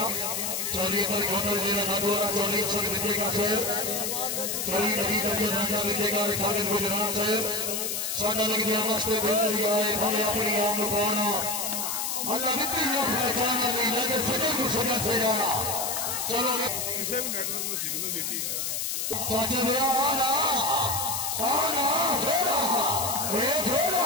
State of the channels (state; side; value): noise; left; hiss, 1 dB below the sound